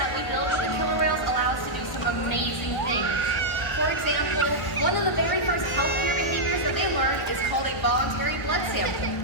we build with the killer whales allow us to do some amazing things. For example, one of the very first healthcare behaviors that they learn is called a voluntary blood sample.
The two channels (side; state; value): right; late; 1.0 ms